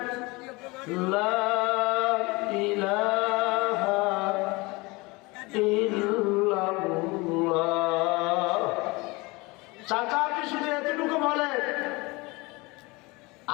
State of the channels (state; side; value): quieter; right; 24.5 dB